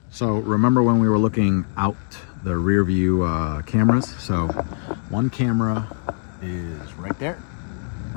So remember when we were looking out the rear view cameras? So one camera is right there,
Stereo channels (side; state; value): right; silent; 64 dB below the other